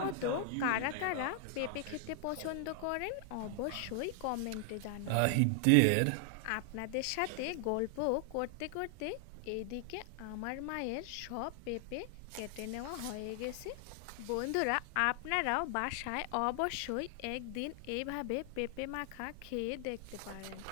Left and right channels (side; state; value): both; different; correlation 0.00